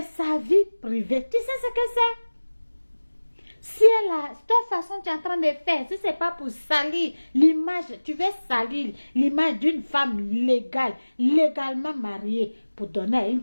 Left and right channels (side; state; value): both; inverted; correlation -1.00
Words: sa vie privée. Tu sais ce que c'est? Si elle a, de toute façon, tu es en train de faire, si ce n'est pas pour salir l'image, tu veux salir l'image d'une femme légale, légalement mariée, pour donner à une